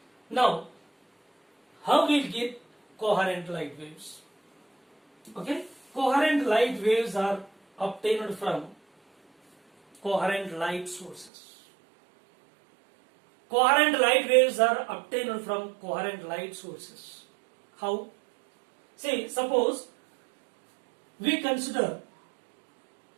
Now, how we get coherent light waves? Okay? Coherent light waves are obtained from coherent light sources. Coherent light waves are obtained from coherent light sources. How? See, suppose we consider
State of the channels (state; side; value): drops out; left; at 11.3 s